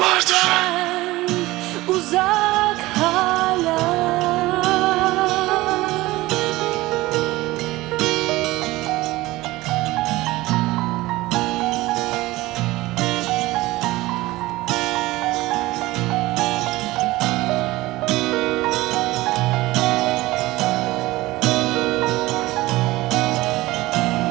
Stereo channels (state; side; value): quieter; left; 18.9 dB